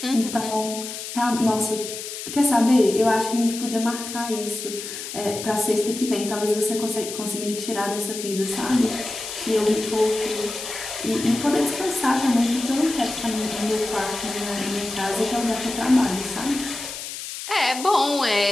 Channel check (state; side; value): noise; left; hiss, 8 dB below the sound